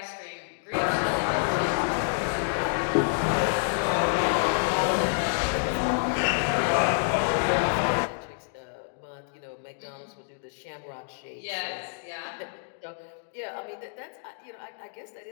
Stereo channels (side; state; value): right; silent; digital silence